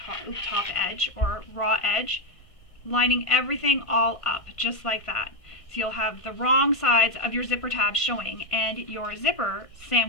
edge or raw edge, lining everything all up just like that. So you'll have the wrong sides of your zipper tabs showing and your zipper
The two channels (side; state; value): right; late; 1.5 ms